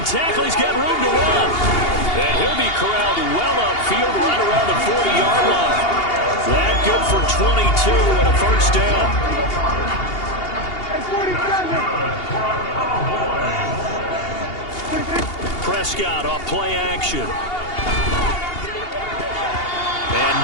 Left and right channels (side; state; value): right; late; 2.8 ms